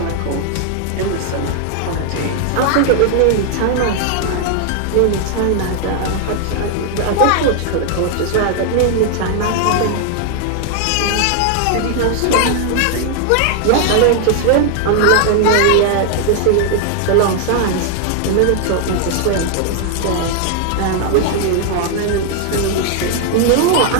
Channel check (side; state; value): both; different; correlation 0.00